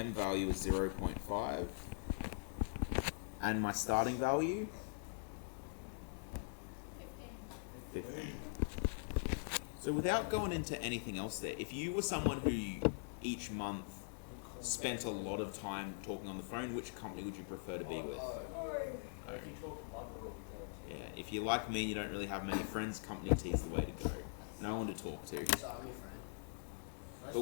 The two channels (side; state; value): right; silent; digital silence